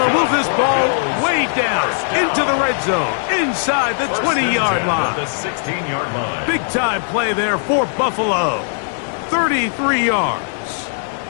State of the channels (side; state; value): right; silent; 67 dB below the other